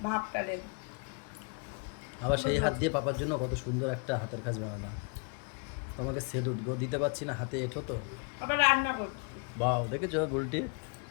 ভাবটা লেগে। আবার সেই হাত দিয়ে পাপার জন্য কত সুন্দর একটা হাতের কাজ বানালাম। তোমাকে সেলুট গো, দিতে পারছি না, হাতে এঁঠো তো। আবার রান্না করছি। বাও, দেখেছো বলটি?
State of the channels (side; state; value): right; quieter; 35.1 dB